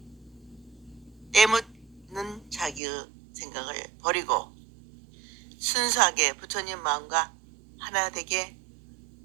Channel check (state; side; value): drops out; left; at 2.8 s